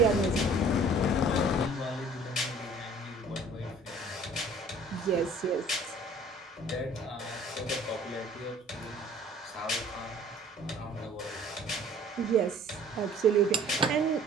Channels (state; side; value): normal; both; correlation 0.51